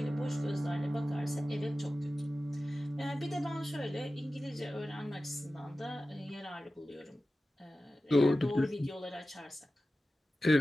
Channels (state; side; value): normal; both; correlation 0.95